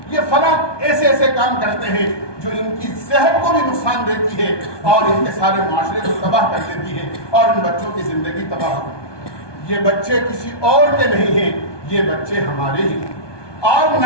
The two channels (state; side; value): late; right; 1.2 ms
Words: یہ فلاں ایسے ایسے کام کرتے ہیں جو ان کی صحت کو بھی نقصان دیتی ہے اور ان کے سارے معاشرے کو تباہ کر دیتی ہے اور ان بچوں کی زندگی تباہ ہو۔ یہ بچے کسی اور کے نہیں ہیں، یہ بچے ہمارے ہی ہیں۔ اور